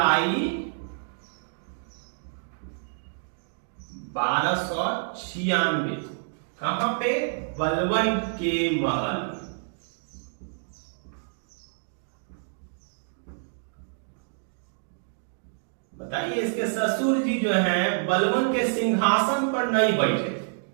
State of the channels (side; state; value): left; silent; digital silence